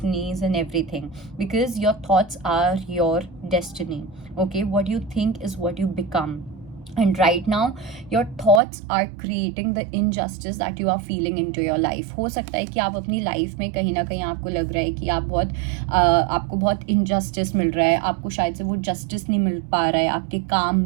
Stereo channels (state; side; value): drops out; left; at 8.6 s